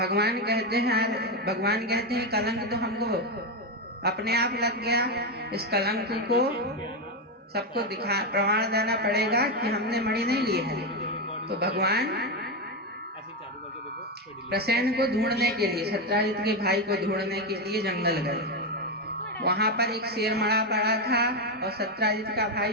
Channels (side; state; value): both; normal; correlation 0.08